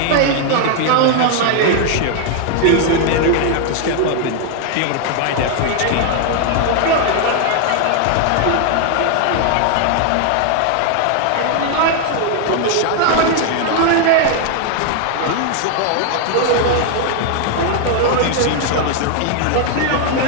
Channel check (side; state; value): both; different; correlation 0.00